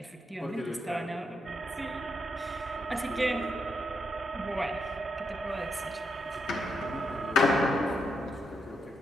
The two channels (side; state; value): both; normal; correlation 0.81